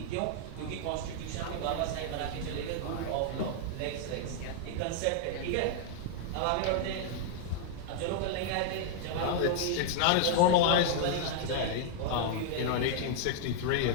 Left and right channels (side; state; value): both; different; correlation -0.01